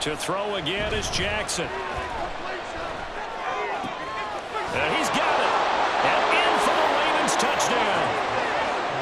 To throw again is Jackson. And he's got it. And in for the Ravens touchdown.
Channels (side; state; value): both; identical; correlation 1.00